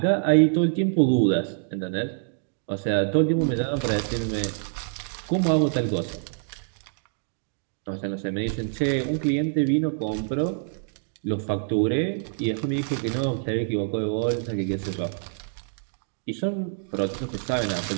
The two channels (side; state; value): left; silent; digital silence